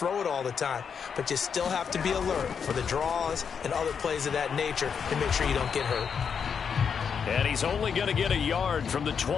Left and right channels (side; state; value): right; quieter; 6.7 dB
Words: it all the time. But you still have to be alert for the draws and other plays of that nature to make sure you don't get hurt. And he's only going to get a yard from the